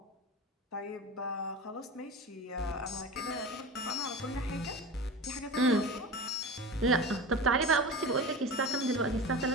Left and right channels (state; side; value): normal; both; correlation 0.31